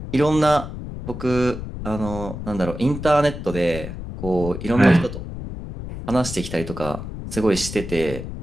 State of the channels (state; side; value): noise; left; rumble, 9 dB below the sound